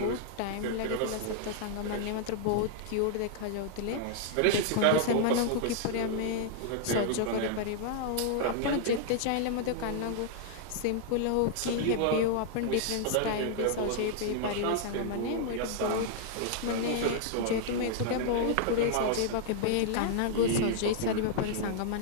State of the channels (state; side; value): different; both; correlation -0.01